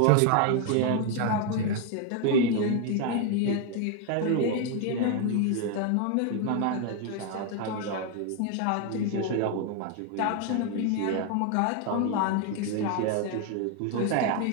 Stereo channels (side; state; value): both; different; correlation 0.00